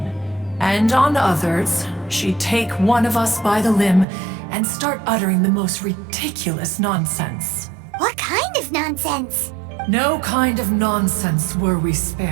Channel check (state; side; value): drops out; left; at 4.0 s